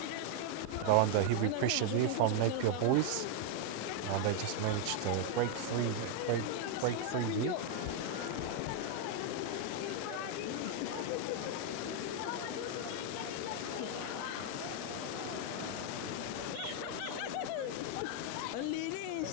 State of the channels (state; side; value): different; both; correlation 0.00